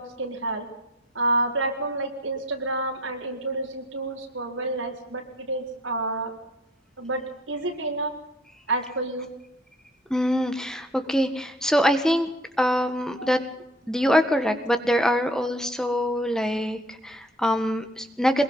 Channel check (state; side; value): normal; both; correlation 0.52